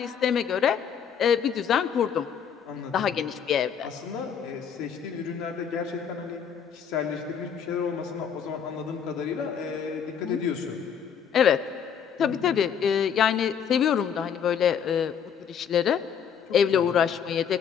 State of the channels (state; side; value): quieter; right; 7.7 dB